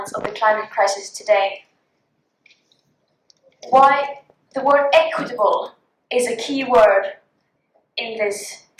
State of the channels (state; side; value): identical; both; correlation 1.00